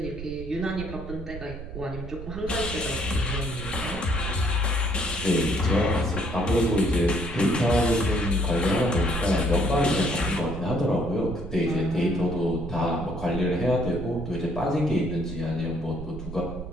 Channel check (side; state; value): right; noise; rumble, 10 dB below the sound